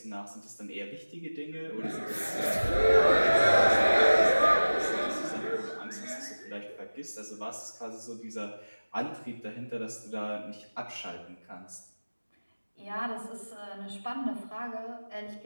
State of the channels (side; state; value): both; inverted; correlation -1.00